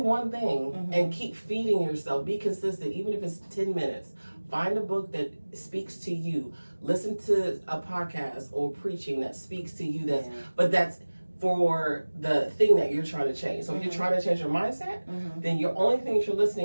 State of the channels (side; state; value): both; inverted; correlation -1.00